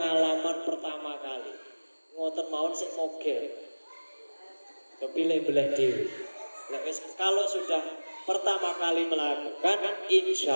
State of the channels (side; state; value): both; inverted; correlation -1.00